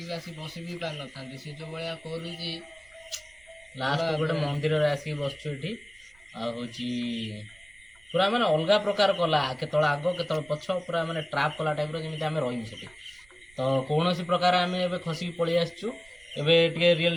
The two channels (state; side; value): noise; right; rumble, 28 dB below the sound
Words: ଆସି ବସି ବି ପାରିନଥାନ୍ତି ସେ ଯୋଉ ଭଳିଆ କରୁଛି ଲାଷ୍ଟ ଗୋଟେ ମନ୍ଦିରରେ ଆସିକି ବସିଛୁ ଏଠି ଆଉ ହେଉଛି ପୁରା ମାନେ ଅଲଗା ପ୍ରକାର କଲା କେତେବେଳେ ଆଗ କେତେବେଳେ ପଛ ପୁରା ମାନେ ଟ୍ରାପ୍ କଲା ଟାଇପ୍ର ଯେମିତି ଆମେ ରହିବୁ ସେଠି ତ କୌଣସି ପ୍ରକାର ଆମେ ଏବେ ଖସିକି ପଳେଇ ଆସିଛୁ ଏବେ ଟିକେ ରିଅଲ୍